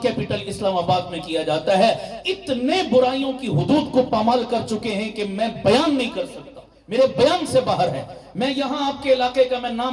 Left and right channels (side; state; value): both; identical; correlation 1.00